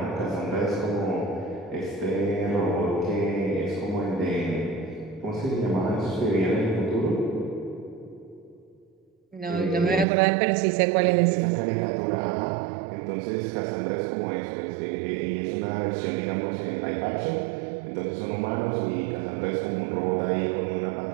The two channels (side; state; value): left; drops out; at 10.1 s